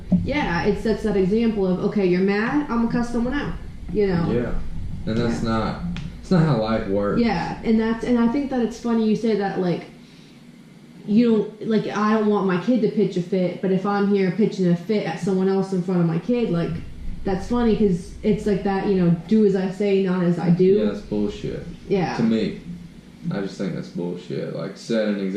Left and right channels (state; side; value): identical; both; correlation 1.00